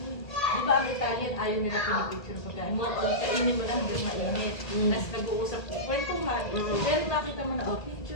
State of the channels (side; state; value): right; late; 1.8 ms